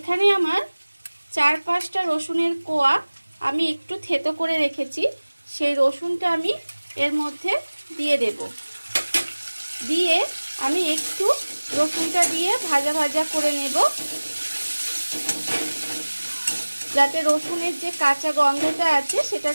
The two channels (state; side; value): inverted; both; correlation -1.00